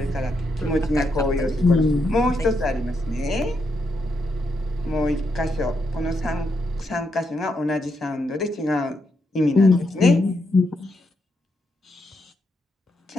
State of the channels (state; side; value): normal; both; correlation 0.80